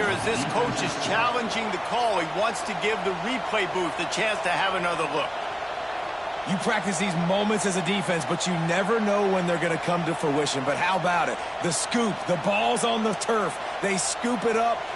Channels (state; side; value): identical; both; correlation 1.00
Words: as this coach is challenging the call. He wants to give the replay booth the chance to have another look. You practice these moments as a defense, but you never know when they're going to come to fruition. But how about it? The scoop, the ball's on the turf. They scoop it up.